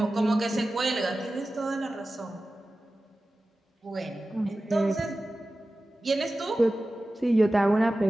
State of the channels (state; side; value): normal; both; correlation 0.95